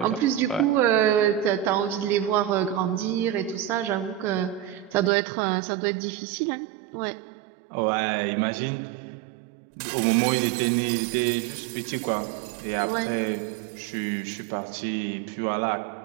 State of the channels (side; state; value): left; drops out; at 5.1 s